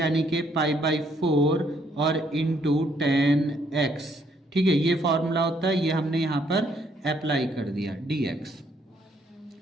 कि पाई बाई 4 और इंटू tan x। ठीक है, ये फॉर्मूला होता है, ये हमने यहाँ पर अप्लाई कर दिया dx।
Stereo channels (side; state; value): both; normal; correlation 0.69